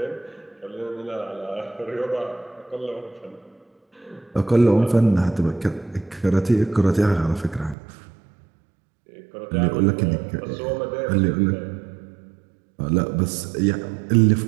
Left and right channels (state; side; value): drops out; left; at 7.8 s